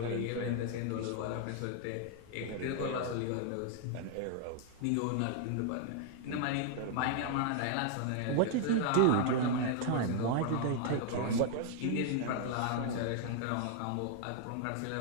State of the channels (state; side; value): different; both; correlation 0.00